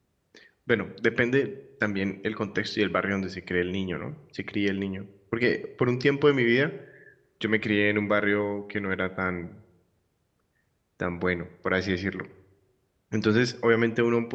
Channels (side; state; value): both; identical; correlation 1.00